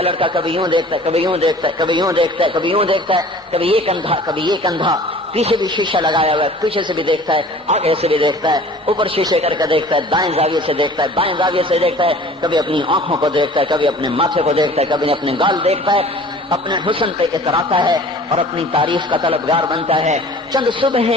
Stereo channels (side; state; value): both; normal; correlation 0.46